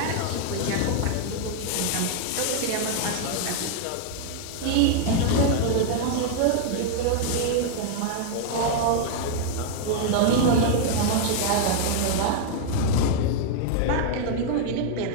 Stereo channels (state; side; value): different; both; correlation 0.00